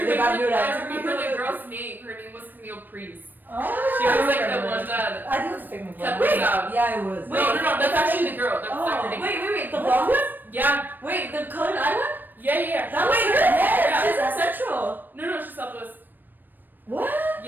remember the girl's name. Her name was Camille Priest. She was like the one that I think it was a fake cut name. this out. Yeah, it was. No, that's actually the girl. That's not her name. Wait, the blonde one? Yeah, Wait, the colored eye one? yeah. That was her? Yeah. She's a central. No, she's Southwest. What?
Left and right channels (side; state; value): left; late; 0.091 ms